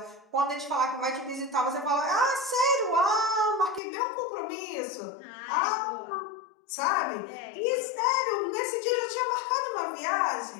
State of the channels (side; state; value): right; drops out; at 3.8 s